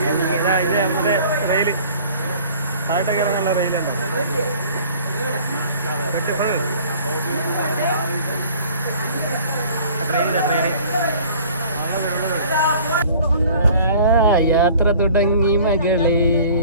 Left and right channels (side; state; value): both; inverted; correlation -0.50